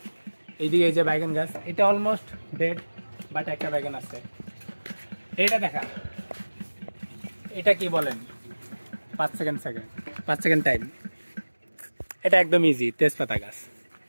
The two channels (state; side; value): inverted; both; correlation -1.00